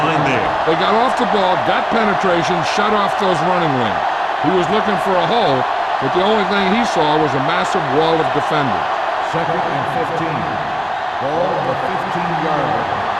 there. They got off the ball, got penetration, shut off those running lanes. He was looking for a hole, but the only thing he saw was a massive wall of defenders. 2nd and 15. Ball on the 15-yard line.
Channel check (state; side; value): identical; both; correlation 1.00